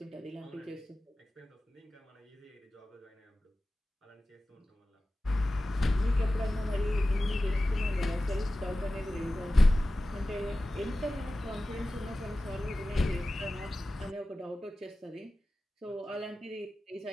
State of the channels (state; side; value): normal; both; correlation 0.95